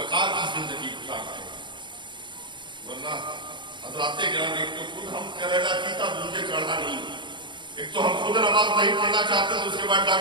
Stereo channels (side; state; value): left; late; 0.23 ms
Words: کی زندگی گزارتے ہیں، ورنہ حضرات گرامی ایک تو خود ہم کریلا پیتا دوسرے چڑھا نہیں، ایک تو ہم خود نماز نہیں پڑھنا چاہتے تو اس کے بعد